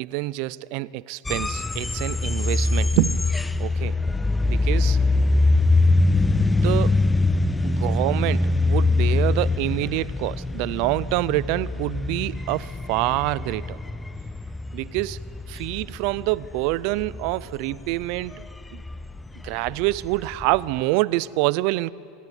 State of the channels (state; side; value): normal; both; correlation 0.61